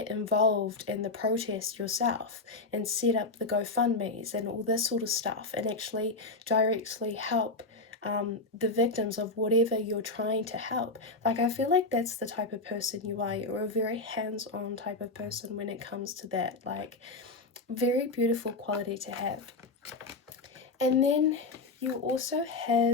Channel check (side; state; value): right; quieter; 3.5 dB